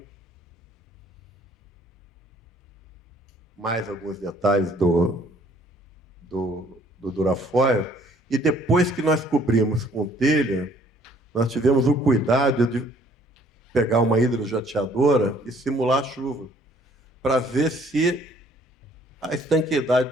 Mais alguns detalhes do durafoil. E depois que nós cobrimos com telha, nós tivemos o cuidado de pegar uma hidrojateadora e simular a chuva, para ver se a estanqueidade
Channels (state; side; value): normal; both; correlation 0.59